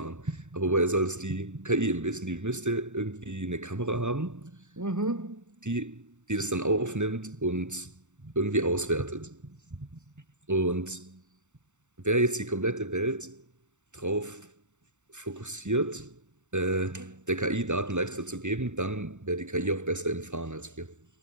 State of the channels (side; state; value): left; late; 0.84 ms